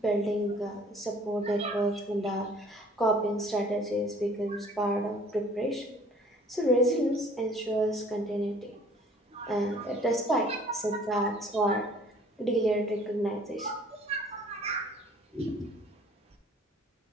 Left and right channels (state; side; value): normal; both; correlation 0.54